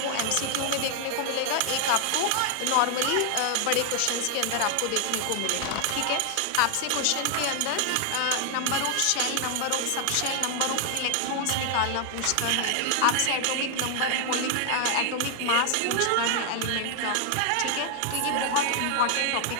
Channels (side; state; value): both; different; correlation 0.00